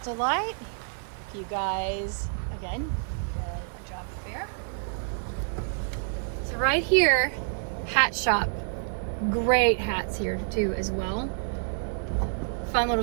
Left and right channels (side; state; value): left; silent; digital silence